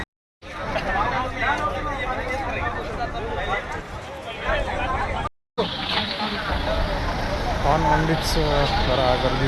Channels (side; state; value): both; identical; correlation 1.00